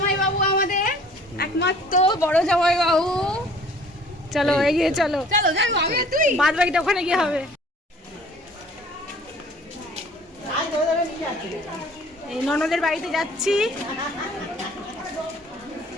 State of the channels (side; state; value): both; normal; correlation 0.52